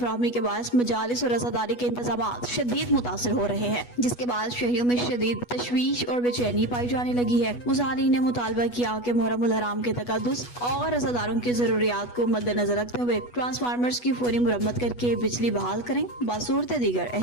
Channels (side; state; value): right; late; 8.2 ms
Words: के बायस मजालिस और रज़ादारी के इंतज़ामात शदीद मुतासर हो रहे हैं, जिसके बाद शहरियों में शदीद तशवीश और बेचैनी पाई जाने लगी है। मुज़ाहरीन ने मुतालबा किया कि मुहर्रम उल हराम के तक़द्दुस और रज़ादारों की ज़रूरियात को मद्देनज़र रखते हुए ट्रांसफार्मर्स की फौरी मुरम्मत करके बिजली बहाल करें। बासूरत दीगर